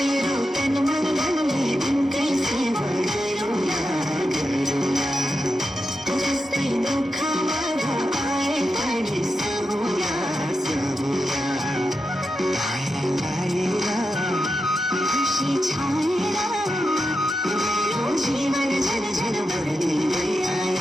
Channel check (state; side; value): normal; both; correlation 0.88